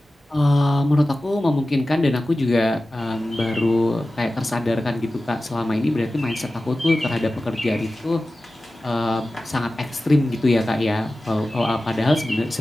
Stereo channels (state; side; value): normal; both; correlation 0.95